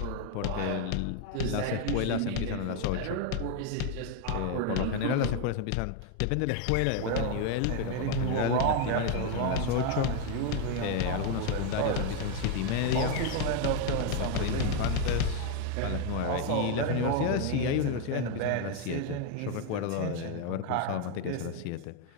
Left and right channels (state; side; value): different; both; correlation 0.01